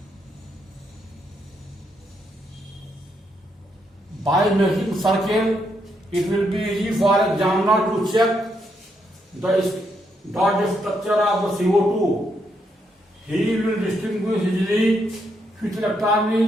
By making circle, it will be easy for examiner to check the dot structure of the CO2. He will distinguish easily which electron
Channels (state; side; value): normal; both; correlation 0.78